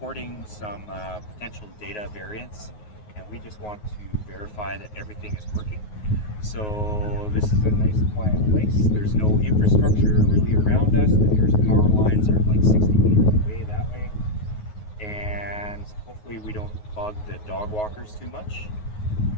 some potential data variance, and we just want to verify that everything is working. So this is a nice quiet place. There's no infrastructure really around us. The nearest power lines are like 60 meters away that way. And hopefully we don't bug the dog walkers too much.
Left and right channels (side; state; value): right; late; 9.5 ms